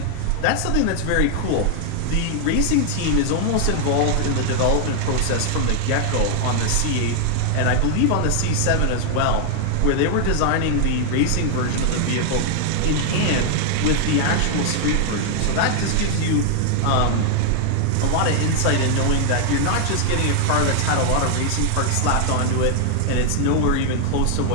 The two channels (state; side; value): different; both; correlation 0.00